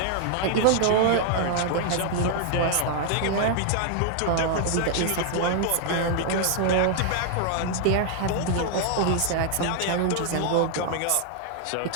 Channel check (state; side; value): different; both; correlation 0.00